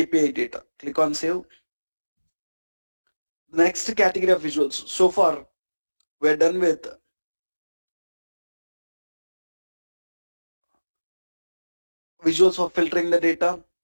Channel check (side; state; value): both; inverted; correlation -1.00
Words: data. Click on save. Next category of visuals. So far, we're done with visuals for filtering the data,